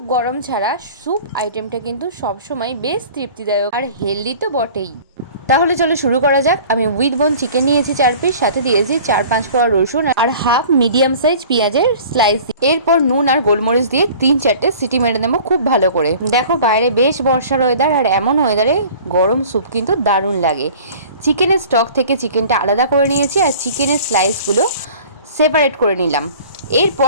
গরম ছাড়া স্যুপ আইটেমটা কিন্তু সবসময় বেশ তৃপ্তিদায়ক আর হেলদি তো বটেই। তাহলে চলো শুরু করা যাক। আমি উইথ বোন চিকেন নিয়েছি 4 পিস, সাথে দিয়েছি 4-5 কোয়া রসুন আর হাফ মিডিয়াম সাইজ পেঁয়াজের স্লাইস। এরপর নুন আর গোলমরিচ দিয়ে 3-4টে সিটি মেরে নেবো খুব ভালো করে। দেখো বাইরে বেশ বর্ষার ওয়েদার, আর এমন ওয়েদারে গরম স্যুপ কিন্তু দারুণ লাগে। চিকেনের স্টক থেকে চিকেনটা আলাদা করে নিয়েছি আর চিকেনের স্লাইসগুলো সেপারেট করে নিলাম।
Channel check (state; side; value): inverted; both; correlation -0.46